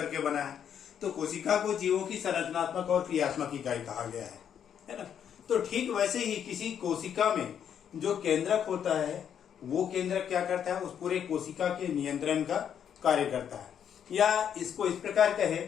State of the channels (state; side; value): quieter; right; 8.7 dB